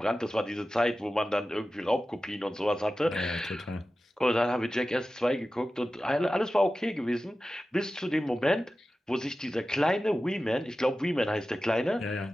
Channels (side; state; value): both; normal; correlation 0.94